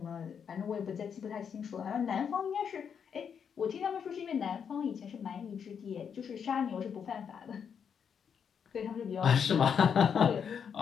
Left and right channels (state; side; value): quieter; right; 7.2 dB